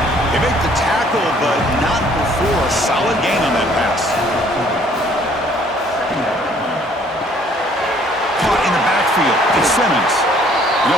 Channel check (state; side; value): normal; both; correlation 0.59